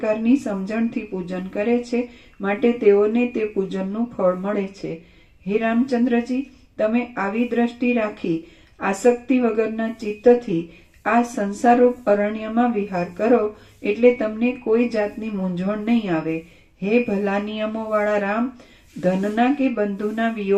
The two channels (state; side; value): identical; both; correlation 1.00